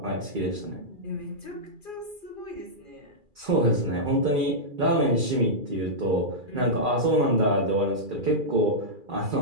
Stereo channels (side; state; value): left; late; 2.4 ms